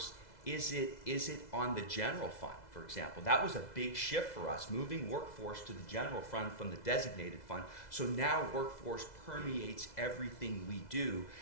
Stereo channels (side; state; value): right; late; 2.0 ms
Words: is it on the general fund, for example? That was a big shift for us, moving workforce to the general fund from the designated fund. So now workforce permeates everything we do.